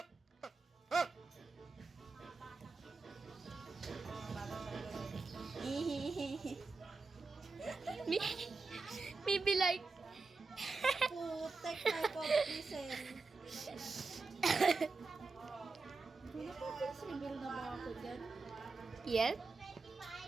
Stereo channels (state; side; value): quieter; left; 4.1 dB